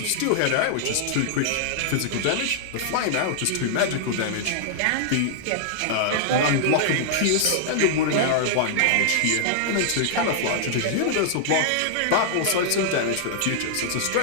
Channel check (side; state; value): both; different; correlation -0.01